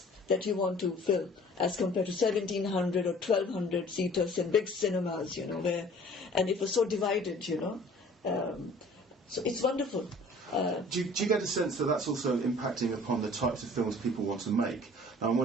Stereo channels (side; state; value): both; normal; correlation 0.50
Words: that you want to fill as compared to 1,700 or 1,200 seaters in big cinemas, and it was so divided, so it's wonderful. Do you get a sense that that's also impacting upon the types of films people want to make? Now, I'm